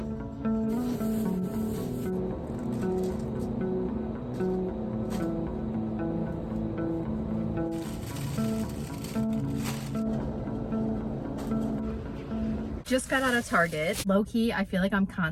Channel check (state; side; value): identical; both; correlation 1.00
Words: Just got out of Target. Low-key, I feel like I'm